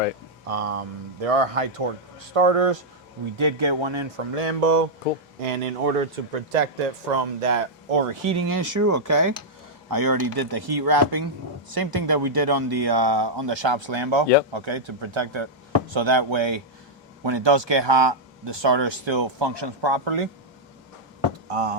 There are high torque starters. We did get one in from Lambo. Cool. And in order to protect it from that overheating issue, I already did the heat wrapping. Same thing that we did on the shop's Lambo. Yep. Okay, to protect it. So that way, when it does get hot, the starter still functions properly.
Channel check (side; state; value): both; normal; correlation -0.05